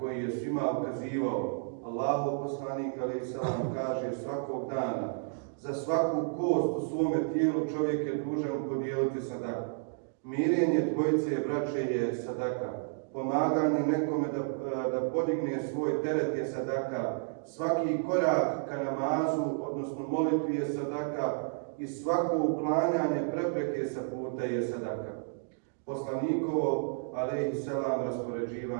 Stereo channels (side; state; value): left; silent; digital silence